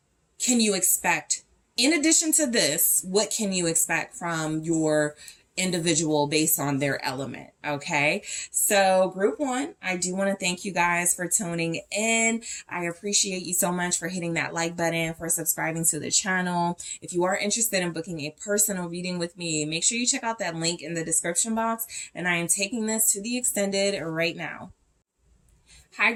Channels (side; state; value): both; identical; correlation 1.00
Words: can you expect? In addition to this, what can you expect from your individual based on their element? Okay, so group 1, I do want to thank you guys for tuning in. I appreciate you so much for hitting that like button, for subscribing to the channel. If you are interested in booking a personal reading with me, make sure you check out that link in the description box, and I am taking this to the extended right now. Hi